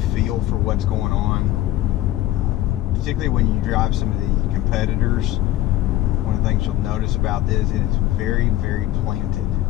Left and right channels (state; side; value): quieter; right; 14.8 dB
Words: feel for what's going on. Particularly when you drive some of the competitors. One of the things you'll notice about this, it is very, very planted.